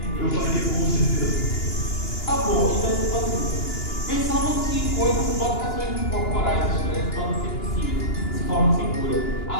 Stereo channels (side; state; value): right; late; 2.9 ms